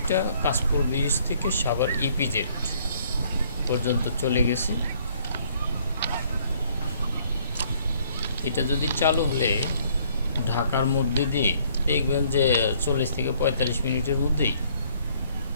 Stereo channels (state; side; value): inverted; both; correlation -0.63